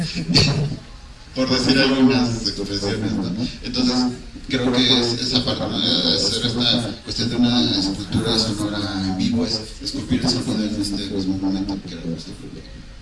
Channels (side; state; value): both; identical; correlation 1.00